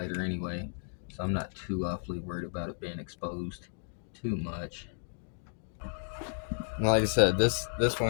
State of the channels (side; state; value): right; silent; digital silence